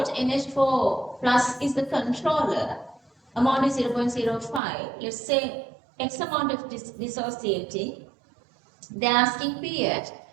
NH4 plus is the controller. Amount is 0.05. Let's say X amount of dissociating. They are asking pH.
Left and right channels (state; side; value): drops out; left; at 4.6 s